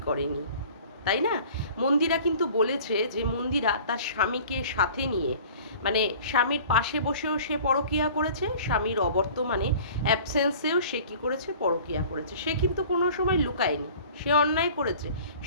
করেনি, তাই না? মন্দিরা কিন্তু বলেছে যে মন্দিরা তার স্বামীকে সাথে নিয়ে, মানে স্বামীর পাশে বসেও সে পরকীয়া করেছে, স্বামীর অবর্তমানে অ্যাবসেন্সেও সে কী করেছে, পরকীয়া করেছে। সে কিন্তু কোনো সময় লুকায়নি, সে অন্যায় করেছে,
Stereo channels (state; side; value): inverted; both; correlation -0.46